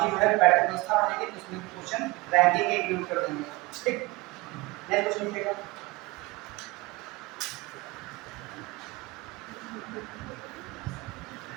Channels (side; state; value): left; quieter; 22.8 dB